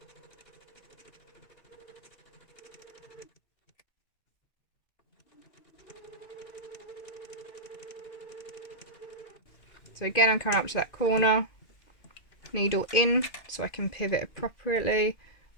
So again, I'm coming up to that corner, needle in so I can pivot appropriately.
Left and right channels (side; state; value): right; late; 2.5 ms